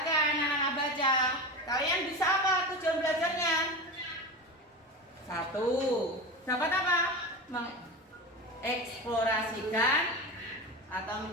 anak-anak baca. Kalian bisa apa tujuan belajarnya? 1. Dapat apa? Mengeksplorasikan atau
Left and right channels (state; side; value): normal; both; correlation 0.25